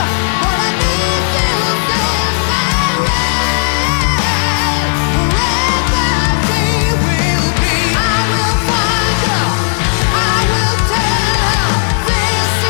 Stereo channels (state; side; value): silent; right; digital silence